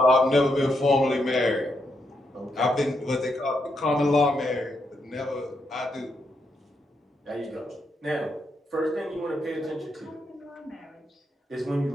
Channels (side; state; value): both; normal; correlation 0.80